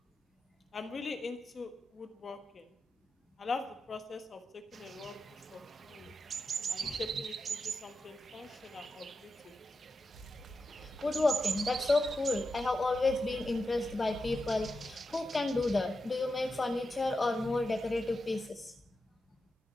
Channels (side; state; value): both; normal; correlation 0.89